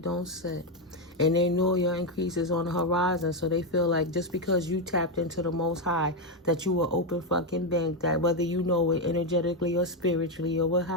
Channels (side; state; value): both; normal; correlation 0.05